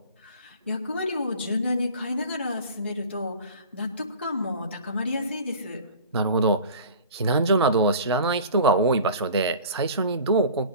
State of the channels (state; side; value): inverted; both; correlation -0.42